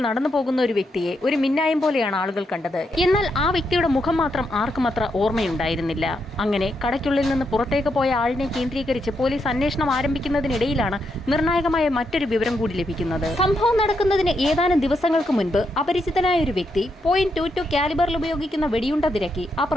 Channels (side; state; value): both; normal; correlation 0.81